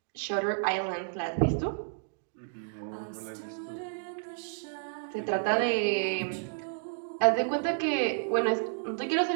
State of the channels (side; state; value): left; silent; digital silence